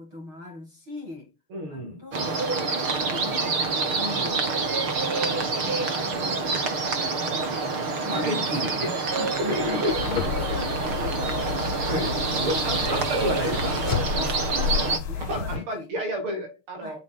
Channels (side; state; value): left; late; 6.7 ms